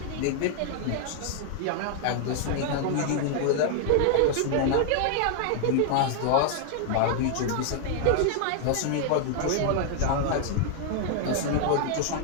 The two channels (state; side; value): different; both; correlation 0.00